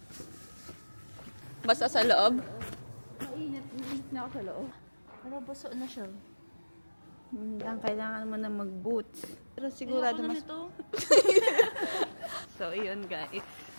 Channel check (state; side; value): inverted; both; correlation -1.00